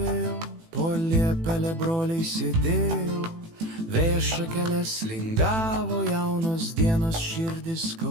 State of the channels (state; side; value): late; left; 18 ms